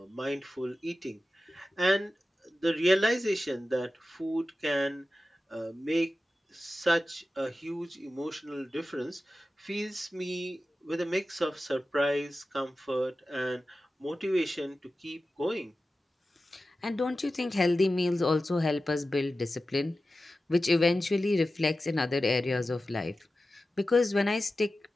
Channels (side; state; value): both; normal; correlation 0.94